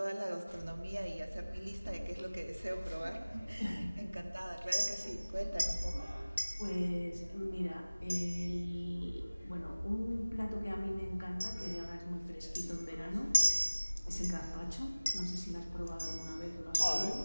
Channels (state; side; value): inverted; both; correlation -0.99